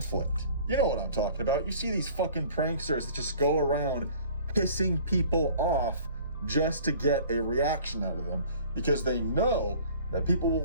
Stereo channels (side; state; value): both; inverted; correlation -0.49